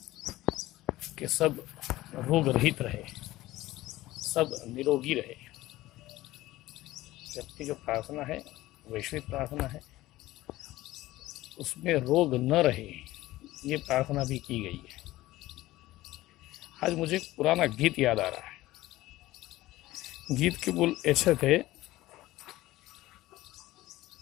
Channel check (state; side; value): quieter; right; 17.0 dB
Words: कि सब रोग रहित रहे, सब निरोगी रहे। जबकि जो प्रार्थना है वैश्विक प्रार्थना है, उसमें रोग न रहे ये प्रार्थना भी की गई है। आज मुझे एक पुराना गीत याद आ रहा है। गीत के बोल ऐसे थे,